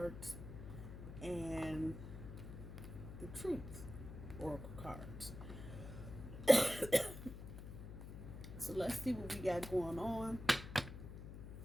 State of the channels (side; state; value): left; noise; hum, 10 dB below the sound